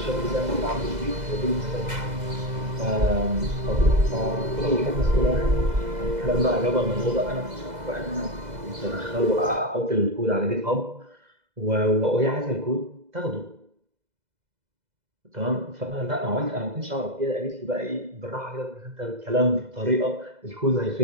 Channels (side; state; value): left; late; 2.0 ms